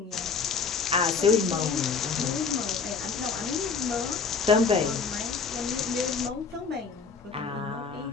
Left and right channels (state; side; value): quieter; right; 5.2 dB